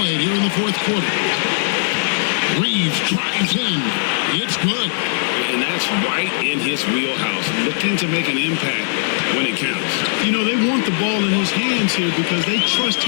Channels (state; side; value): silent; right; digital silence